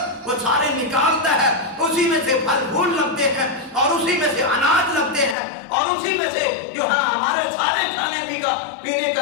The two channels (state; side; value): drops out; right; at 5.4 s